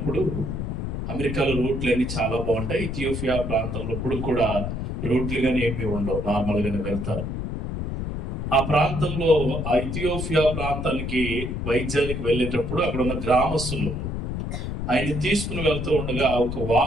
అమెరికాలో రోడ్లు అన్ని చాలా బాగుంటాయి, ఇథియోపియా ప్రాంతంలో ఇప్పుడు కూడా రోడ్లు కానీ ఏమీ ఉండవు, నార్మల్గానే వెళ్తారు. ఆ ప్రాంతంలో, ఆ ఇథియోపియా ప్రాంతానికి వైద్యానికి వెళ్ళేటప్పుడు అక్కడ ఉన్న గ్రామస్తులు ఆయన తీసుకుని వెళ్తూ ఉండగా ఒక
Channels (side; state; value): left; noise; rumble, 3 dB below the sound